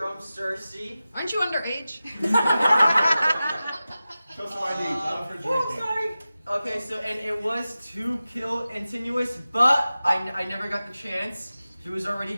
Cersei. Aren't you underage? Show some ID, not for drinking. Sorry. Okay, so and it was to kill Antinous, but I never got the chance. He was already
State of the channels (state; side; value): inverted; both; correlation -0.95